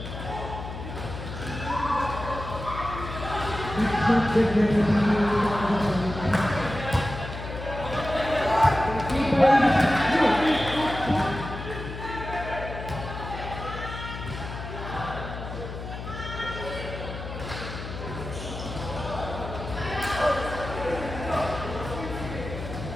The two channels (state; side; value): noise; left; hum, 9 dB below the sound